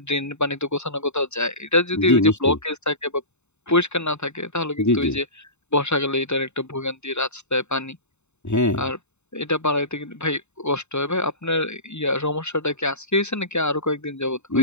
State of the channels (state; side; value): late; right; 0.82 ms